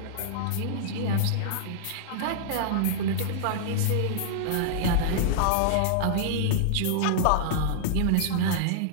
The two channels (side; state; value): both; different; correlation -0.01